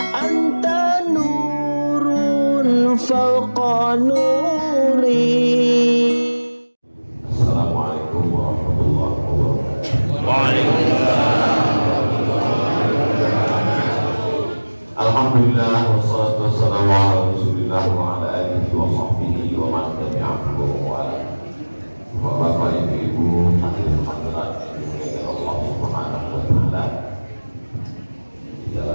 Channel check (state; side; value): inverted; both; correlation -1.00